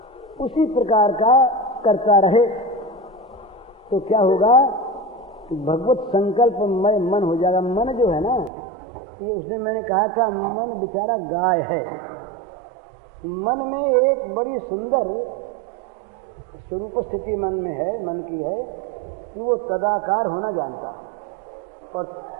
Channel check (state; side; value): drops out; left; at 8.5 s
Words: उसी प्रकार का करता रहे, तो क्या होगा? भगवत संकल्प में मन हो जाएगा। मन जो है ना, ये उसने मैंने कहा था, मन बेचारा गाय है। मन में एक बड़ी सुंदर स्वरूप स्थिति मन में है, मन की है कि वो तदाकार होना जानता है, और